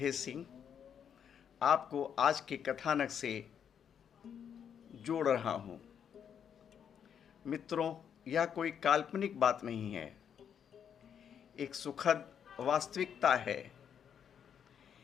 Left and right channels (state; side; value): quieter; right; 8.2 dB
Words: सिंह आपको आज के कथानक से जोड़ रहा हूँ। मित्रों, यह कोई काल्पनिक बात नहीं है, एक सुखद वास्तविकता है